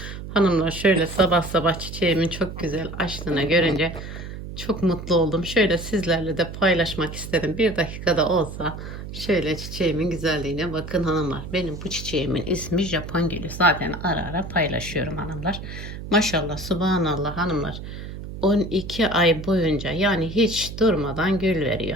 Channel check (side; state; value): right; noise; hum, 10 dB below the sound